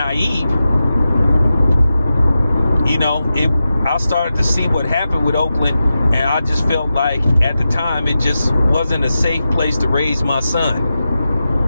I started to see what happened with Oakland, and I just felt like at the time it just wasn't a safe place to raise my son.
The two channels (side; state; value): both; inverted; correlation -0.91